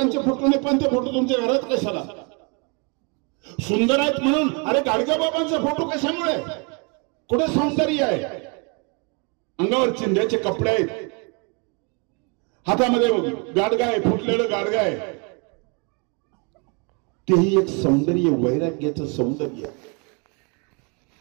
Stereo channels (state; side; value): quieter; left; 33.7 dB